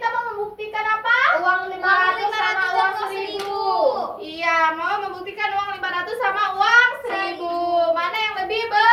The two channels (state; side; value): identical; both; correlation 1.00